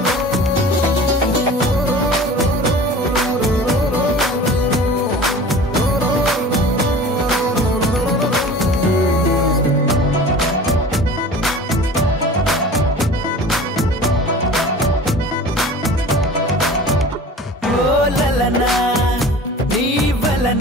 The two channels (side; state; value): both; normal; correlation 0.40